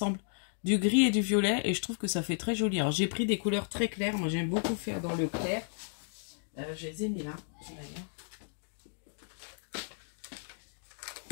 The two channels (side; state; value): right; silent; digital silence